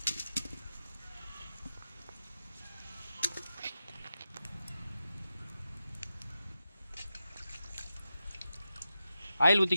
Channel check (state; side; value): inverted; both; correlation -0.90